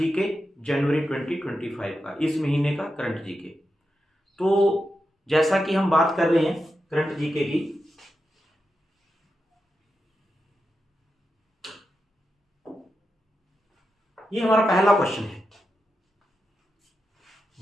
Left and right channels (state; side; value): normal; both; correlation 0.89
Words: जनवरी 2025 का, इस महीने का करंट जीके। तो जैसा कि हम बात कर रहे हैं करंट जीके की, ये हमारा पहला क्वेश्चन है।